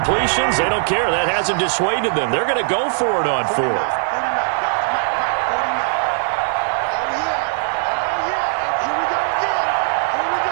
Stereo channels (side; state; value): left; silent; 66 dB below the other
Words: they don't care. That hasn't dissuaded them. They're going to go for it on 4th.